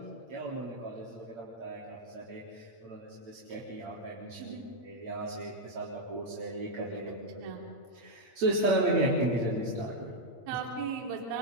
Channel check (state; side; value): late; left; 8.7 ms